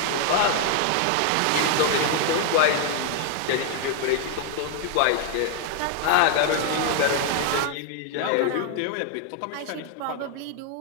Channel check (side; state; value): both; different; correlation 0.00